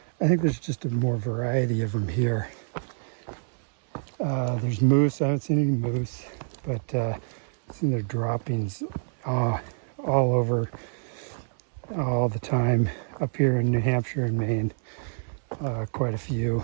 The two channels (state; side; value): silent; left; 60 dB below the other